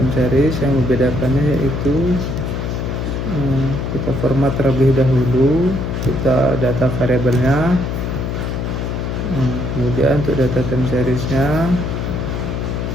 series yang membedakannya yaitu kita format terlebih dahulu, kita data variabelnya, kemudian untuk data time seriesnya,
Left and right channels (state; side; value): noise; left; hum, 3 dB below the sound